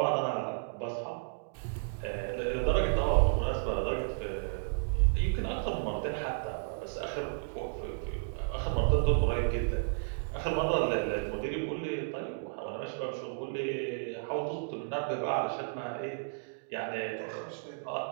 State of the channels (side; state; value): left; silent; digital silence